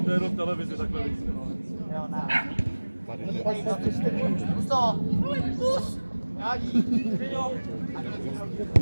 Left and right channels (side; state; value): both; inverted; correlation -1.00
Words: To je jenom v televizi takhle víc. jo, ne. Tady jde. Pus to! Pus! Jádí!